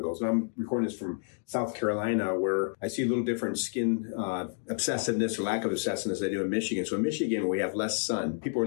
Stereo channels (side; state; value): right; silent; digital silence